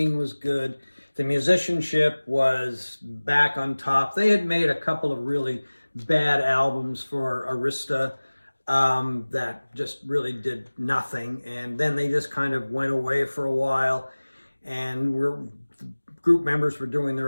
was good, the musicianship was back on top. They had made a couple of really bad albums for Arista that just really did nothing, and then they just kind of went away for a while, and group members were doing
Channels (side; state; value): both; inverted; correlation -1.00